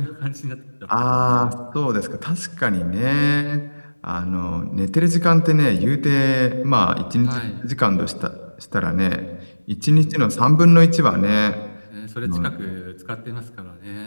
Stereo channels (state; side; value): inverted; both; correlation -1.00